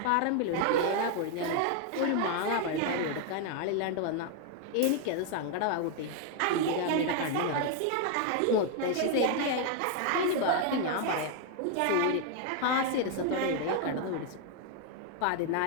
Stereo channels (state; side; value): different; both; correlation 0.00